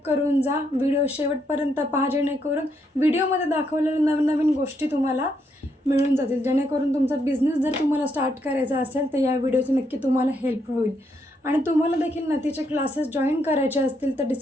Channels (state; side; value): normal; both; correlation 0.76